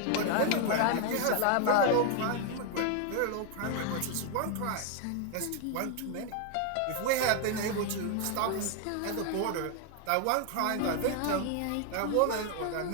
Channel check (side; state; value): both; different; correlation 0.00